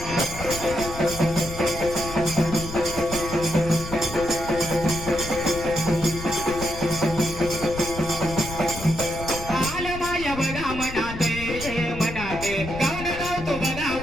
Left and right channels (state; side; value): noise; left; rumble, 10 dB below the sound